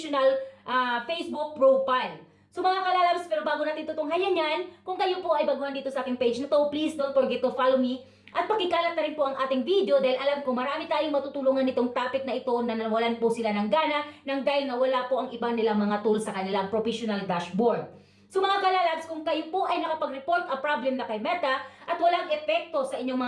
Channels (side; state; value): both; identical; correlation 1.00